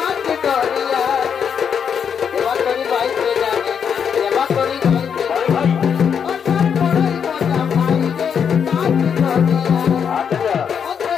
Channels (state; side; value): quieter; right; 7.3 dB